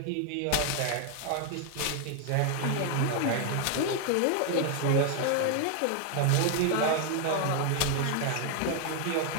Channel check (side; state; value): both; different; correlation 0.00